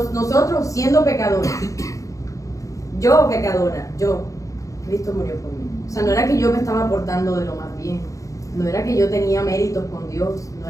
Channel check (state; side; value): late; right; 0.16 ms